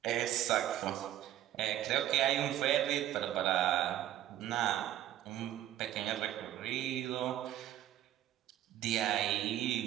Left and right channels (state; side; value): quieter; left; 12.6 dB